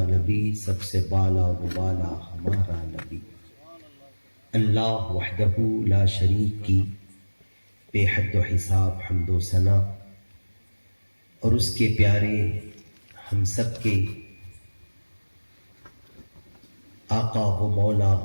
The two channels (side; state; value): both; inverted; correlation -1.00